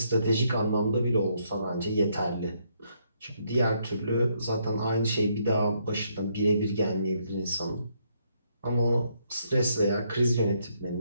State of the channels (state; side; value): inverted; both; correlation -0.74